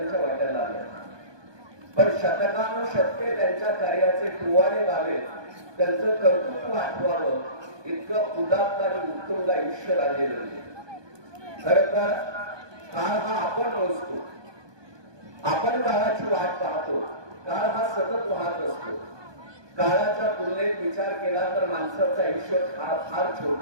वाट्याला आलं. पण शतकानुशतके त्यांच्या कार्याचे टुवाडे व्हावे, त्यांचं कर्तृत्व आठवावं इतकं उदात्त आणि उत्तुंग आयुष्य राजे जगले. खरं तर काळ हा आपण मोजतो, आपण काळाची वाट पाहतो. काळ हा सतत वाहत असतो. काळाच्या तुलनेत विचार केला तर माणसाचं आयुष्य फार छोट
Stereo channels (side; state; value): left; late; 1.2 ms